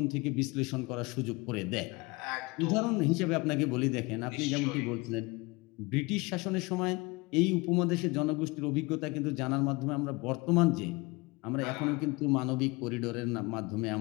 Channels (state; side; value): quieter; right; 25.1 dB